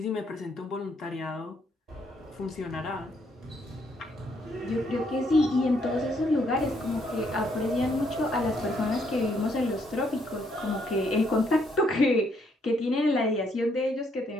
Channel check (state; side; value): normal; both; correlation 0.72